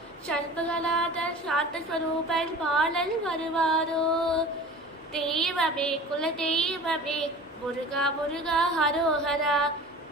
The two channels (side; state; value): both; normal; correlation 0.39